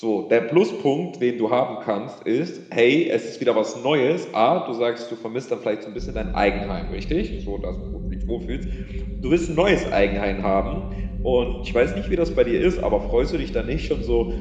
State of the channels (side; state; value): both; identical; correlation 1.00